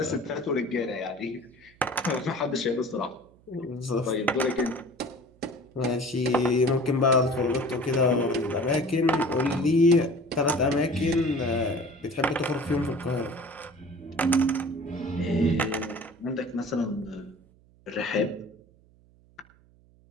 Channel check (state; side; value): noise; right; hum, 29 dB below the sound